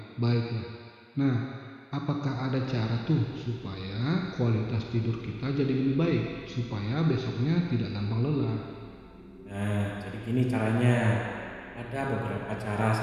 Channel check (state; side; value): identical; both; correlation 1.00